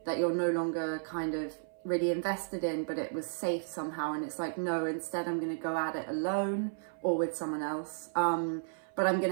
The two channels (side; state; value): left; silent; 55 dB below the other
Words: that you're no longer kind of really invested in, but it was safe somehow. And it's like, no, instead I'm going to go at it alone or with someone else. But I'm